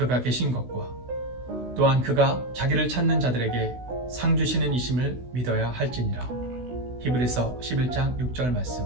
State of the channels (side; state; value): left; late; 16 ms